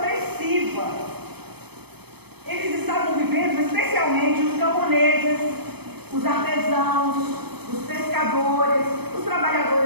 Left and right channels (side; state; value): left; late; 0.98 ms